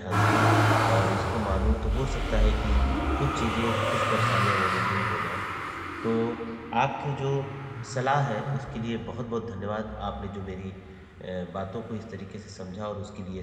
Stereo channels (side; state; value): both; identical; correlation 1.00